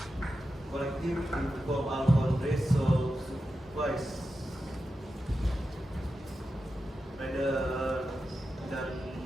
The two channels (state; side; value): normal; both; correlation 0.90